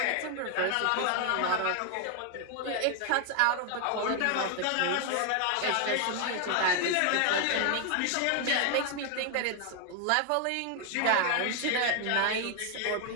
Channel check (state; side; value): different; both; correlation 0.00